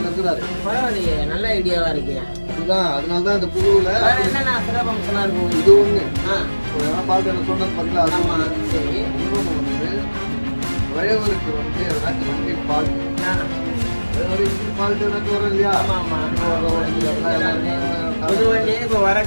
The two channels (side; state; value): both; inverted; correlation -1.00